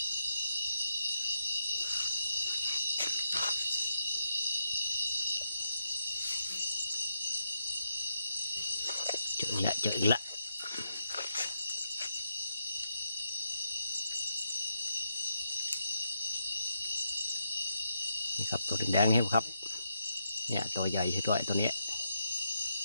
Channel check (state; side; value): inverted; both; correlation -0.82